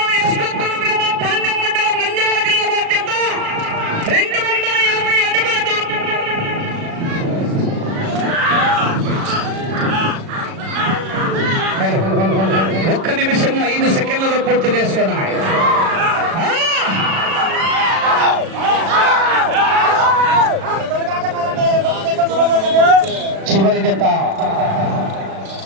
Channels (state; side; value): late; left; 36 ms